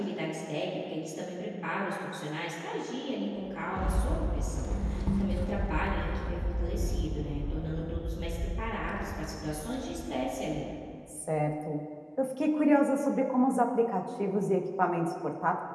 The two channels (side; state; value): both; identical; correlation 1.00